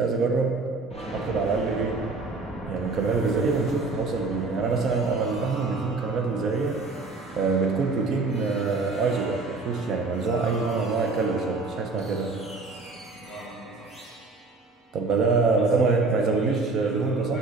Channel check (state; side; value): quieter; left; 3.7 dB